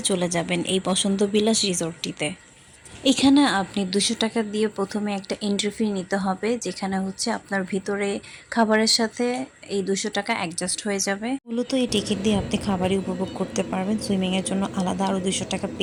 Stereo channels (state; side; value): identical; both; correlation 1.00